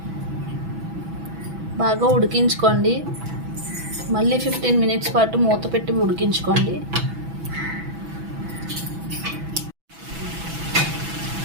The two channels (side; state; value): left; late; 6.0 ms